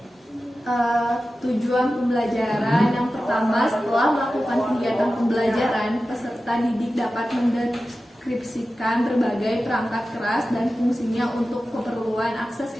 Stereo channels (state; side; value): normal; both; correlation 0.94